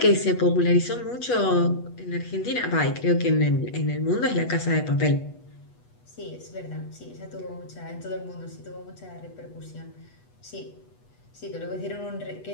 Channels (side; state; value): right; late; 8.2 ms